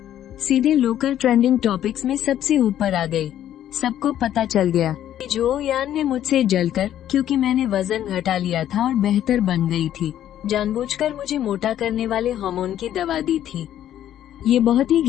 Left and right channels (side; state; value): right; quieter; 11.4 dB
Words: सीधे लोकल ट्रेंडिंग टॉपिक्स में सबसे ऊपर आ गई। सबको पता चल गया कि जो यान ने मुझसे जलकर, क्योंकि मैंने वजन घटा लिया था और बेहतर बन गई थी, जानबूझकर मुझे मोटा करने वाले हार्मोन की दवा दी थी। ये बहुत ही